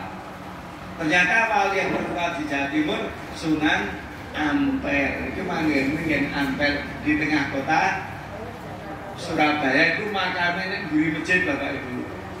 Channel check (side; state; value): both; identical; correlation 1.00